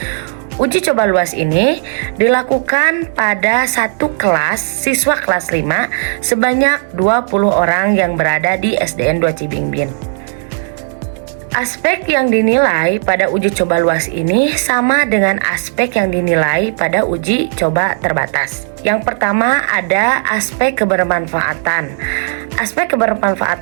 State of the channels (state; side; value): silent; left; digital silence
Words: Uji coba luas ini dilakukan pada satu kelas siswa kelas 5 sebanyak 20 orang yang berada di SDN 2 Cibingbin. Aspek yang dinilai pada uji coba luas ini sama dengan aspek yang dinilai pada uji coba terbatas. Yang pertama ada aspek kebermanfaatan. Aspek